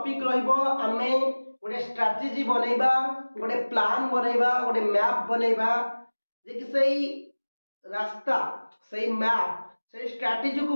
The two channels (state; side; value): inverted; both; correlation -1.00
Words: रहइबो हमें गोटे स्ट्रेटजी बनेबा गोटे प्लान बनेबा गोटे मैप बनेबा जे कि सही रास्ता सही मैप सही स्ट्रेटजी को